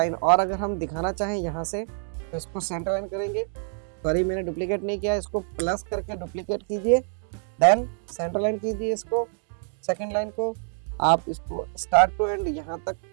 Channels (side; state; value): left; silent; 56 dB below the other